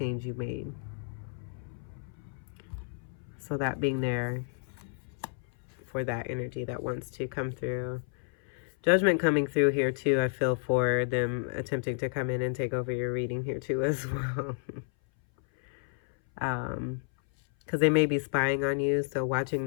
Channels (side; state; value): right; silent; 57 dB below the other